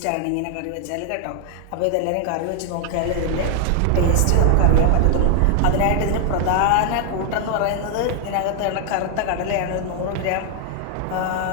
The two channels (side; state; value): both; different; correlation 0.00